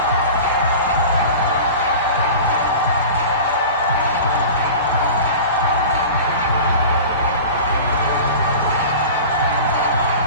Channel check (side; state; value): both; inverted; correlation -0.36